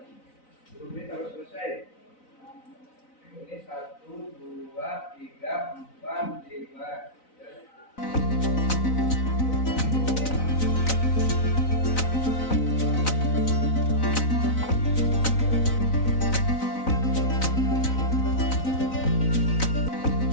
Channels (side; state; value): right; late; 3.9 ms